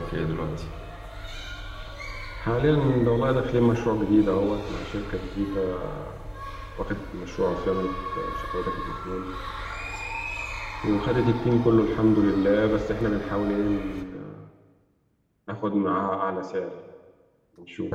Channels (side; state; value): both; identical; correlation 1.00